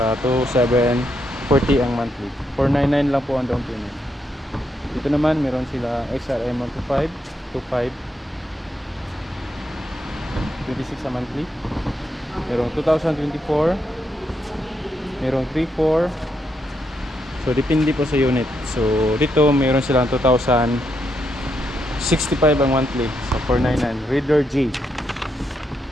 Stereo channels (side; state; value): both; normal; correlation 0.80